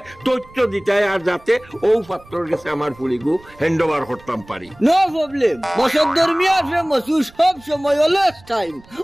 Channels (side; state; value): right; noise; rumble, 25 dB below the sound